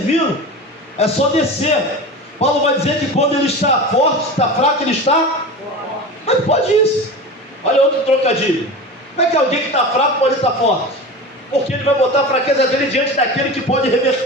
É só descer. Paulo vai dizer que quando ele está forte, está fraco, ele está... Mas pode isso. Olha outro trocadilho. Como é que alguém que está fraco pode estar forte? Porque ele vai botar a fraqueza dele diante daquele que pode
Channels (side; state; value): both; normal; correlation 0.30